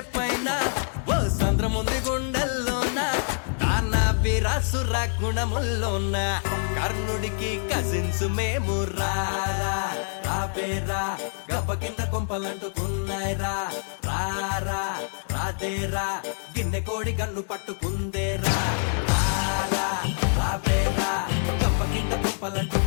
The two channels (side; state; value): right; silent; digital silence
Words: పైన ఓ సంద్రముంది గుండెల్లోన వీరాసుర గుణముల్లోన కర్ణుడికి కజిన్స్ మేము రారా గబ్బ కింద కొంపలంటుకున్నాయిరా రారా రాదేరా గిన్నె కోడి కన్ను పట్టుకుందేరా రాబేరా గబ్బ కింద